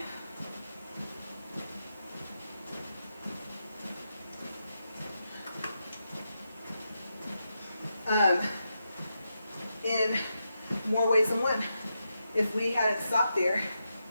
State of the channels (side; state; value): both; inverted; correlation -0.86